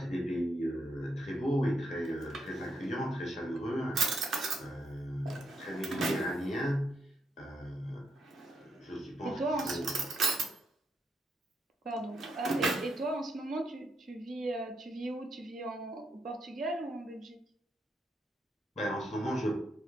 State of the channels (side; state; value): both; normal; correlation 0.79